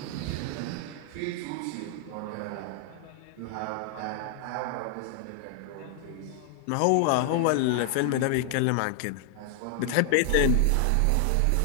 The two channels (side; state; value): both; different; correlation 0.00